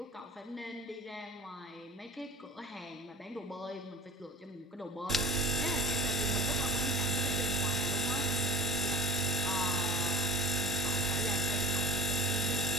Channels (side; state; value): both; normal; correlation 0.41